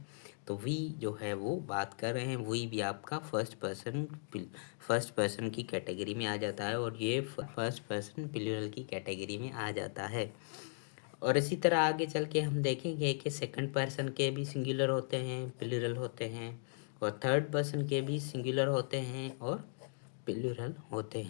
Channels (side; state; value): right; silent; digital silence